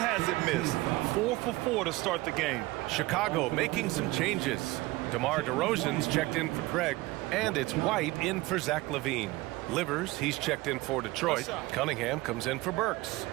missed. 4 for 4 to start the game. Chicago making some changes. DeMar DeRozan's checked in for Craig. And it's White in for Zach LaVine. Livers, he's checked in for Detroit. Cunningham comes in for Burks.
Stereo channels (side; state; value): left; quieter; 20.2 dB